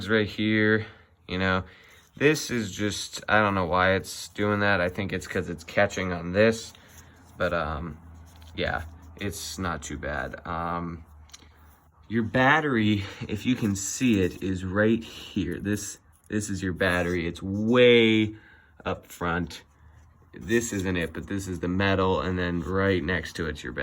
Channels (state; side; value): identical; both; correlation 1.00